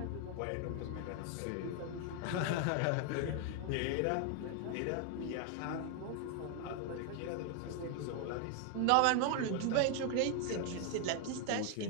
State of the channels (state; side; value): different; both; correlation 0.00